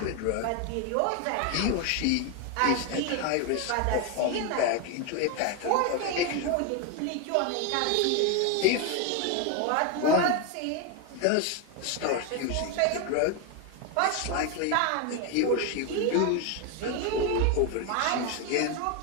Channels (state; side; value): different; both; correlation 0.01